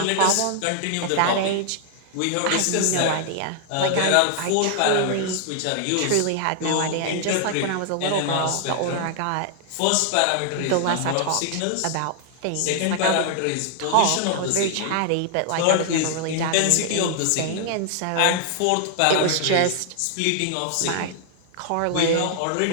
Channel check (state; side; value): different; both; correlation 0.00